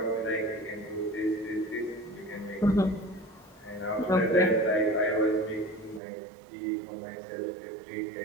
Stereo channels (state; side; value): drops out; left; at 6.0 s